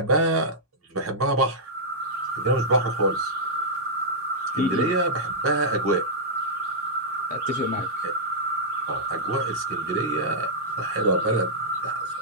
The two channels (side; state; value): both; normal; correlation -0.09